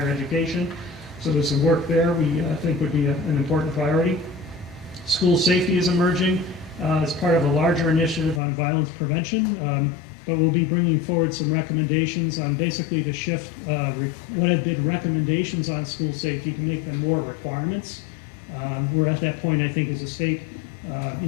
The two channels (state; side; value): drops out; right; at 8.4 s